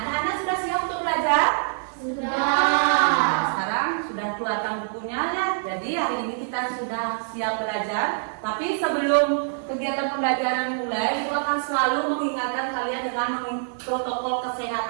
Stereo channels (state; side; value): silent; left; 62 dB below the other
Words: anak-anak sudah siap untuk belajar? Sudah. Nah, sekarang sudah keluarkan bukunya ya. Jadi hari ini kita sudah siap belajar. Tapi sebelum kegiatan pembelajaran dimulai, Ibu akan selalu mengingatkan kalian dengan protokol